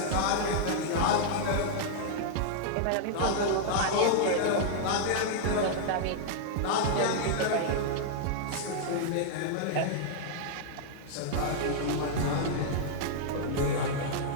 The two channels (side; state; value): both; different; correlation -0.01